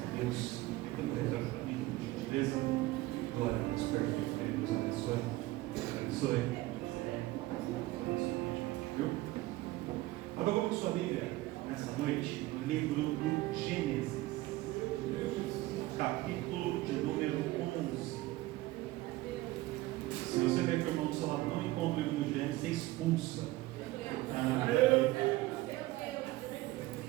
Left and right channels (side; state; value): left; quieter; 18.3 dB